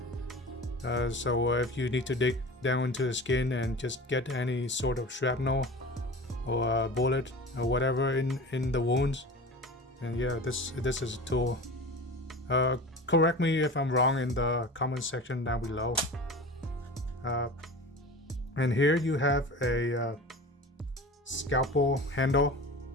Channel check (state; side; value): normal; both; correlation 0.35